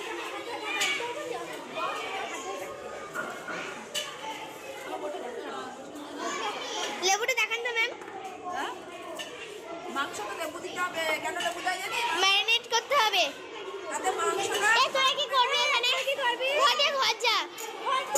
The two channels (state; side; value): identical; both; correlation 1.00